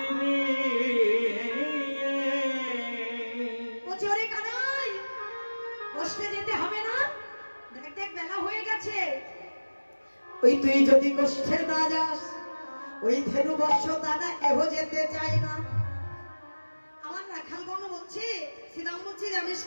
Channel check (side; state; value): both; inverted; correlation -1.00